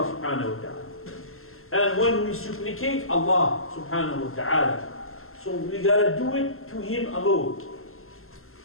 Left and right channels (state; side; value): late; right; 0.62 ms